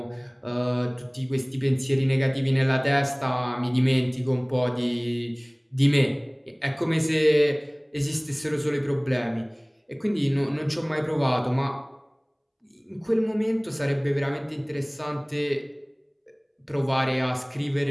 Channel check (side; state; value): both; identical; correlation 1.00